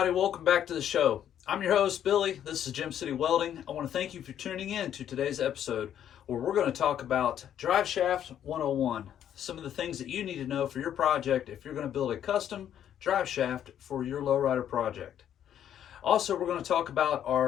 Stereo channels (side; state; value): right; quieter; 10.1 dB